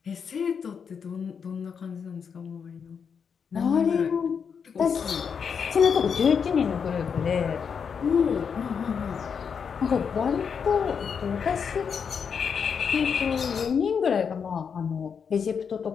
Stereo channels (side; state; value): right; quieter; 6.6 dB